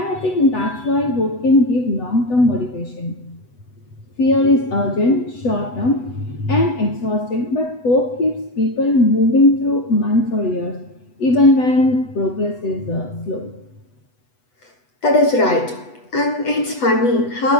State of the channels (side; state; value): right; late; 8.1 ms